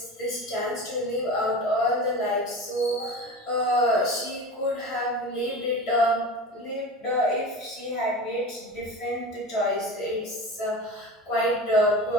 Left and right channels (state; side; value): normal; both; correlation 0.31